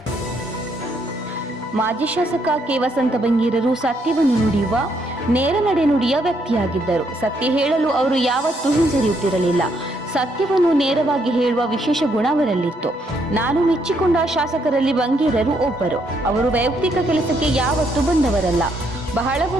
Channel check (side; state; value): both; normal; correlation 0.73